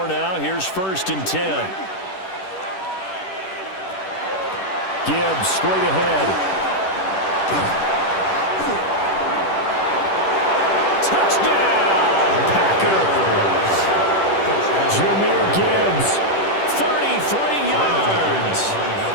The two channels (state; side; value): late; right; 10 ms